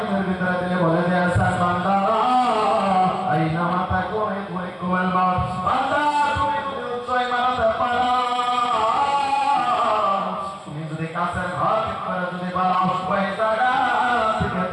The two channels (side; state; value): both; identical; correlation 1.00